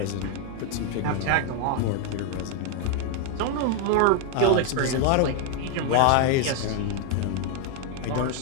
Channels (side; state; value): both; different; correlation 0.00